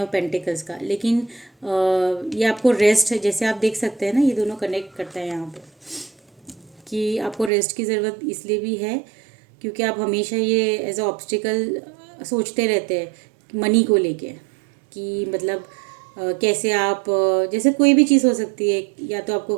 पेंटिकल्स का, लेकिन ये आपको रेस्ट, जैसे आप देख सकते हैं ना, ये दोनों कनेक्ट करता है यहाँ पे, कि आपको रेस्ट की ज़रूरत इसलिए भी है क्योंकि आप हमेशा ये एज अ ऑब्स्टिकल सोचते रहते हैं मनी को लेके, कि मतलब कैसे आप जैसे कोई भी चीज़ हो सकती है, या तो आपको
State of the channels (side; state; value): left; drops out; at 7.5 s